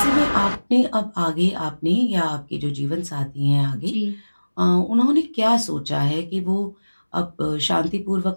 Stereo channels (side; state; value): both; inverted; correlation -1.00